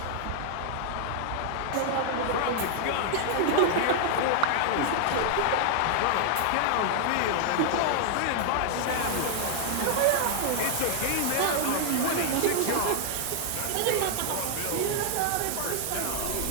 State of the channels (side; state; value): both; different; correlation 0.00